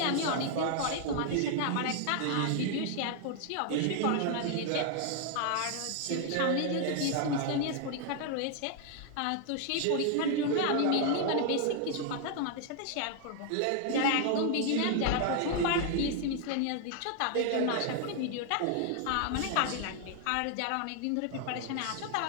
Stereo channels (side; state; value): both; different; correlation 0.00